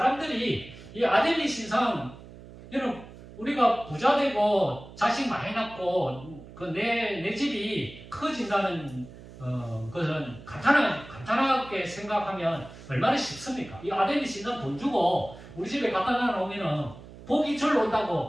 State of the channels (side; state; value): right; noise; hum, 17 dB below the sound